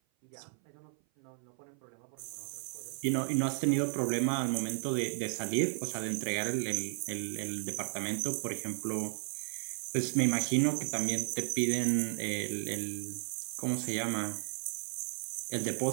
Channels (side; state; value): left; silent; 55 dB below the other